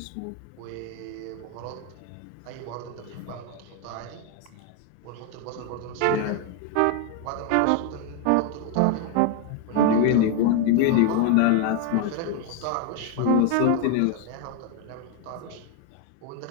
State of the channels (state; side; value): different; both; correlation 0.01